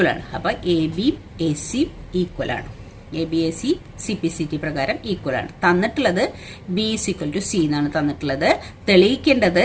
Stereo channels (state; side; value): identical; both; correlation 1.00